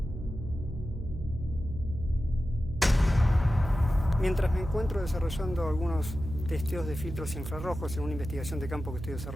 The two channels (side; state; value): right; noise; hum, 8 dB below the sound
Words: Mientras me encuentro desarrollando algunos testeos de filtros infrarrojos en una investigación de campo que estoy